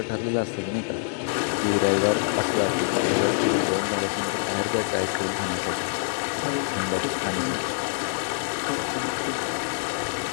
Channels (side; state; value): right; silent; 61 dB below the other